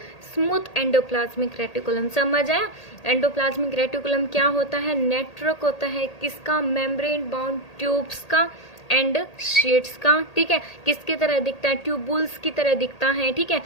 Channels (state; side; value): late; right; 1.8 ms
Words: smooth endoplasmic reticulum. समझ आया। एंडोप्लाज्मिक रेटिकुलम क्या होता है, नेटवर्क होता है, किसका, मेम्ब्रेन बाउंड ट्यूब्स का एंड शीट्स का। ठीक है, किसकी तरह दिखता है, ट्यूबुल्स की तरह दिखता है। ठीक है,